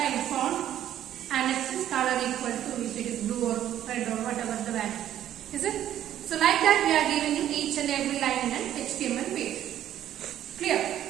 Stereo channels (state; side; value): quieter; left; 11.5 dB